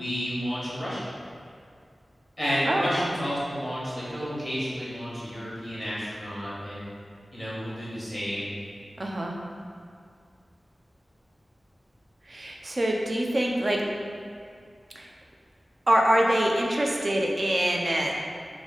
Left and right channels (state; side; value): normal; both; correlation 0.96